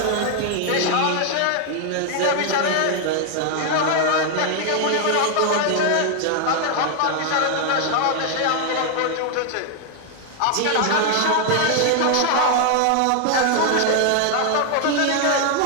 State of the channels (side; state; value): both; different; correlation 0.00